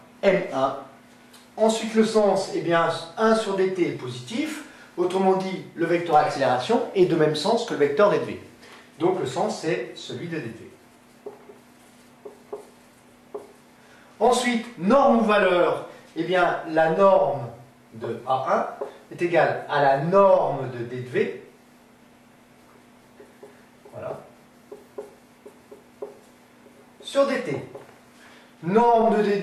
M1. Ensuite, le sens, eh bien, 1 sur dt est positif. Autrement dit, le vecteur accélération est de même sens que le vecteur d de v. Donc le sens, c'est celui de d de v. Ensuite, norme ou valeur, eh bien, la norme de A1 est égale à la norme de d de v. Voilà. Sur dt. Norme de d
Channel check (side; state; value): both; identical; correlation 1.00